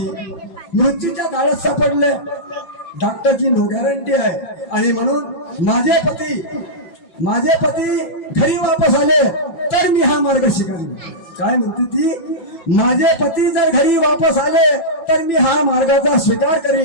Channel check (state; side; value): late; right; 5.5 ms